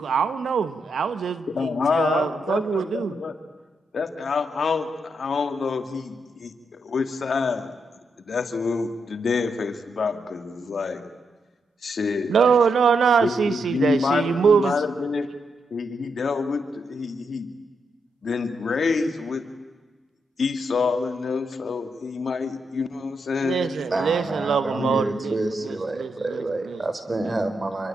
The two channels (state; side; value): normal; both; correlation 0.81